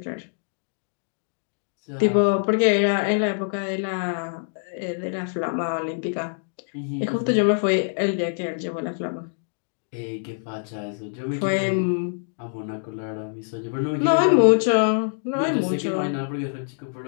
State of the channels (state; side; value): silent; right; digital silence